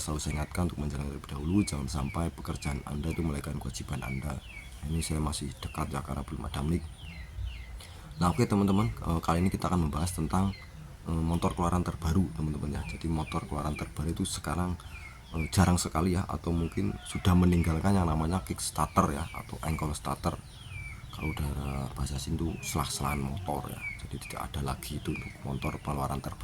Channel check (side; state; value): both; identical; correlation 1.00